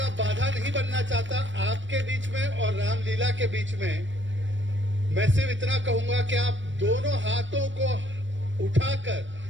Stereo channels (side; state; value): left; late; 0.54 ms